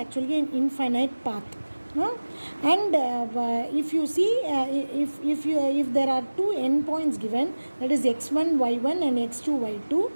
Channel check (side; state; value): both; inverted; correlation -1.00